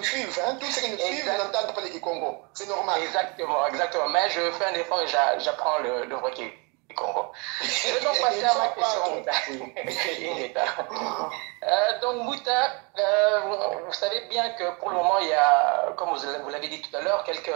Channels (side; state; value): left; quieter; 31.5 dB